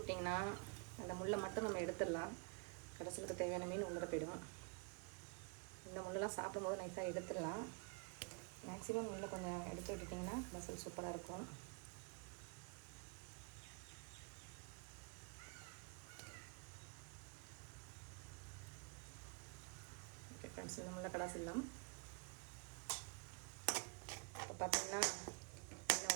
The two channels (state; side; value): quieter; left; 34.8 dB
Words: அந்த முள்ளை மட்டும் நம்ம எடுத்துடலாம். கடைசிலுக்கு தேவையான மீன் உள்ளே போயிடும். இந்த முள்ளெல்லாம் சாப்பிடும்போது நைஸாக எடுத்துடலாம். மேக்ஸிமம் முள்ளை கொஞ்சம் எடுத்து விட்டுட்டிங்கன்னா மசால் சூப்பராக இருக்கும். ஓகே ஃப்ரெண்ட்ஸ், இந்த முள்ளை கடாசிடலாம். இப்போ பார்த்தீங்கன்னா நல்லா